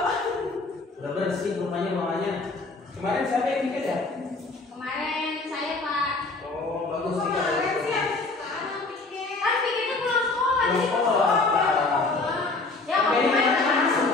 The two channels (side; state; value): right; quieter; 3.5 dB